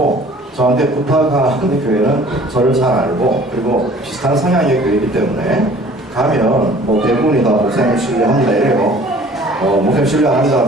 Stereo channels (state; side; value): normal; both; correlation 0.51